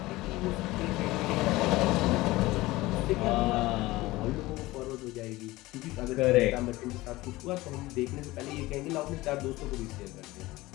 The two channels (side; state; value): right; quieter; 19.2 dB